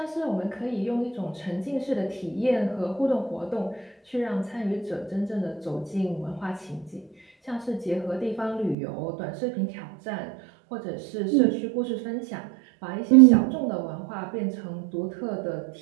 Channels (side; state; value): left; drops out; at 8.8 s